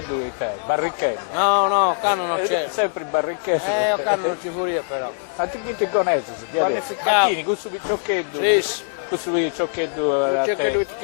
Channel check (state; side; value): silent; right; digital silence